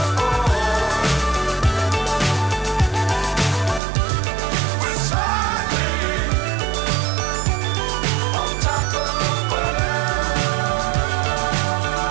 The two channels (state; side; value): drops out; left; at 3.8 s